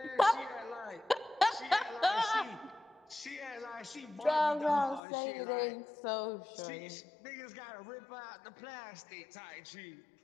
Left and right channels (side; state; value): right; drops out; at 5.0 s